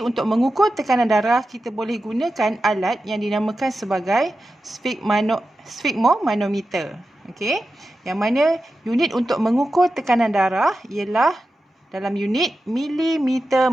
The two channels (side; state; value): both; normal; correlation 0.92